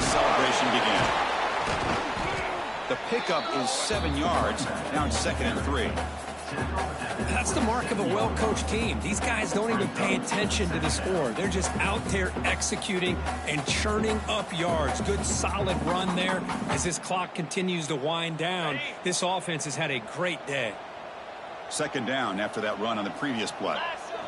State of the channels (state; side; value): identical; both; correlation 1.00